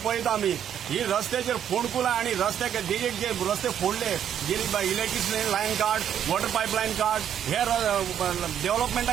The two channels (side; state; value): left; quieter; 9.5 dB